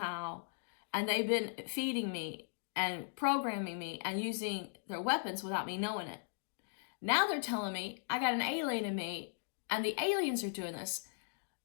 and they've been feeding me and programming me and using their weapons without me knowing it. Now they're telling me I got an alien in me, and the aliens are doing this.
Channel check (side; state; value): right; silent; digital silence